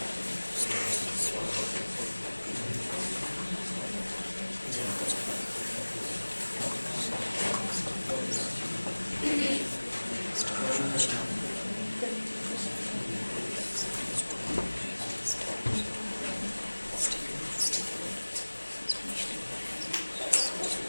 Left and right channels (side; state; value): both; inverted; correlation -1.00